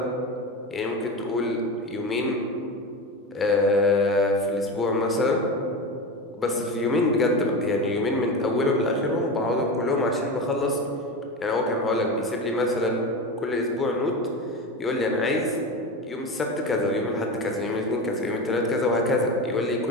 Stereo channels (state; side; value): normal; both; correlation 0.24